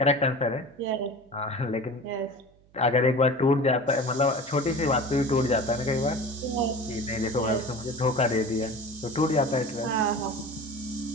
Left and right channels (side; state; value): right; noise; hum, 30 dB below the sound